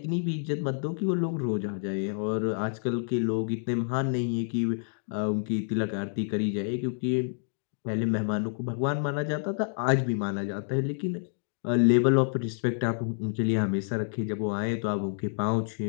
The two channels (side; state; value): right; silent; digital silence